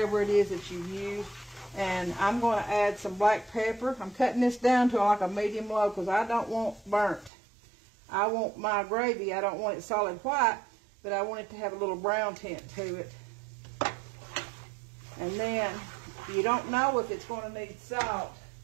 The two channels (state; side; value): drops out; left; at 7.3 s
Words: it is that you've used. And I'm going to add some black pepper. I'm cutting this down to like a medium low because I don't want burnt. I want my gravy, I don't want it solid white, but I want it to have a little brown tint to it. And then you don't know if it's going to need salt.